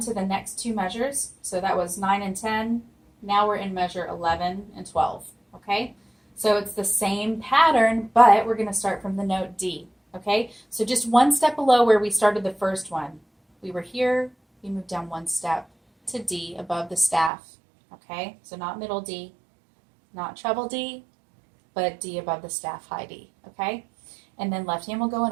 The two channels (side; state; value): left; drops out; at 17.3 s